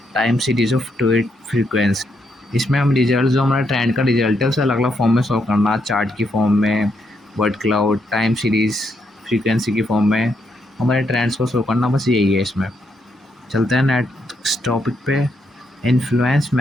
time series of tweet frequency. इसमें हम रिजल्ट, जो हमारा ट्रेंड का रिजल्ट है उसे अलग अलग फॉर्म में शो करना, चार्ट की फॉर्म में, word cloud, time series, frequency की फॉर्म में हमारे ट्रेंड्स को शो करना। बस यही है इसमें। चलते हैं नेक्स्ट टॉपिक पे, influence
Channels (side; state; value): both; normal; correlation 0.78